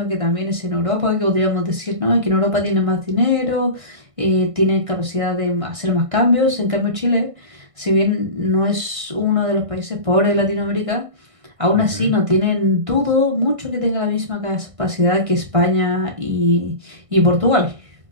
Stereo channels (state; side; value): late; left; 1.5 ms